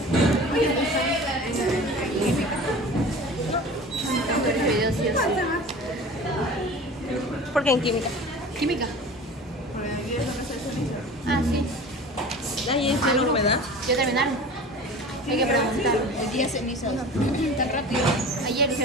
¿Por qué en química? Química. Ah, sí. Ahí es la humedad. ¿Ya terminaron? Hay que preguntar. El día ceniza. Tan rápido. Ayer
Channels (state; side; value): normal; both; correlation 0.38